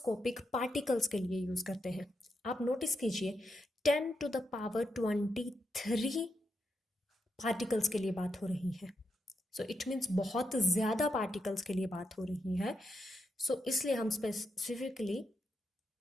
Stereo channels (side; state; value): both; normal; correlation 0.84